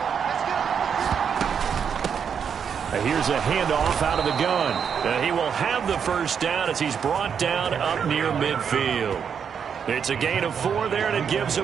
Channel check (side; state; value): left; quieter; 7.2 dB